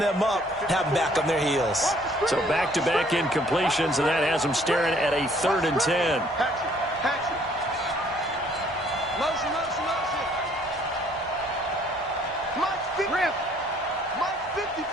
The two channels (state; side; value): normal; both; correlation 0.61